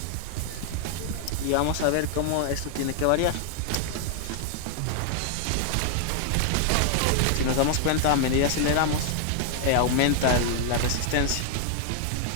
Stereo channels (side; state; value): both; different; correlation 0.00